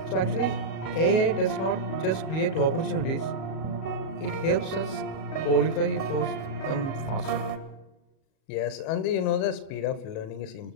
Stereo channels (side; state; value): right; late; 37 ms